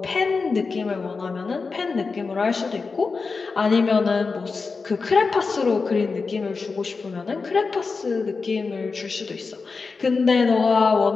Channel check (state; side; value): quieter; right; 4.5 dB